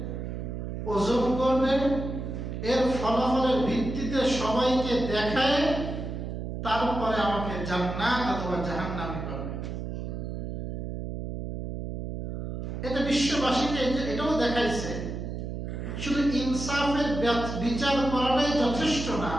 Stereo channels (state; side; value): noise; right; hum, 5 dB below the sound